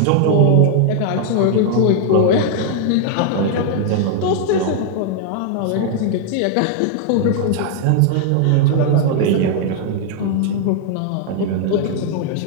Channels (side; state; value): both; different; correlation 0.00